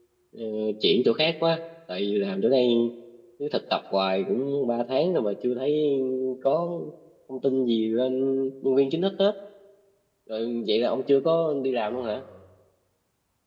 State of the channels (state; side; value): identical; both; correlation 1.00